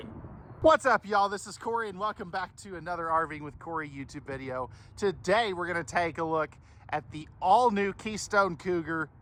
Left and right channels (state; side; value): identical; both; correlation 1.00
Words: What's up, y'all? This is Cory, and welcome back to another RVing with Cory YouTube video. Today, we're going to take a look at the all-new Keystone Cougar